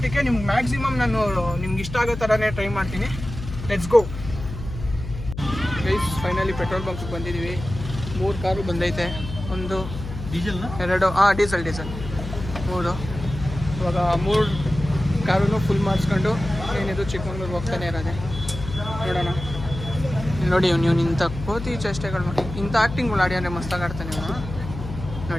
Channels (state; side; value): noise; left; hum, 9 dB below the sound